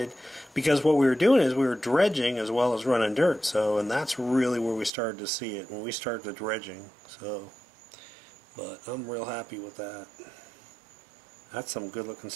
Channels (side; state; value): left; drops out; at 4.9 s